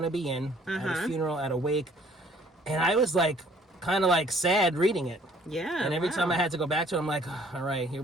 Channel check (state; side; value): normal; both; correlation 0.58